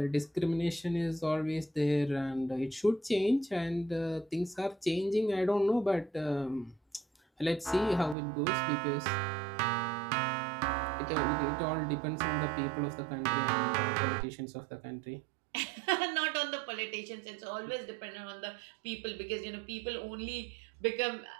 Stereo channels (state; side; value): drops out; left; at 8.2 s